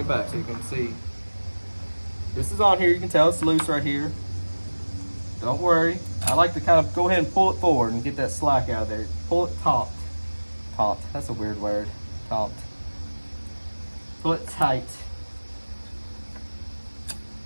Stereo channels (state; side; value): inverted; both; correlation -1.00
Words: back so you can see. This is on here. You can tell it's loose right here. Don't worry. I like to kind of go ahead and pull it forward and get that slack out of there. Pull it taut. Taut. That's a weird word. Taut. Pull it tight.